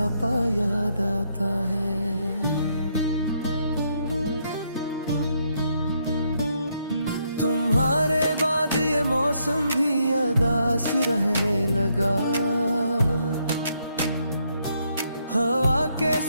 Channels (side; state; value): both; inverted; correlation -0.75